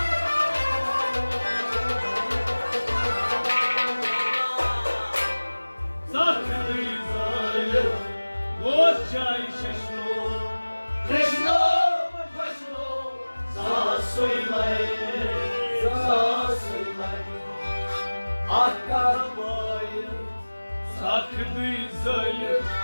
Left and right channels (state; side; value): inverted; both; correlation -1.00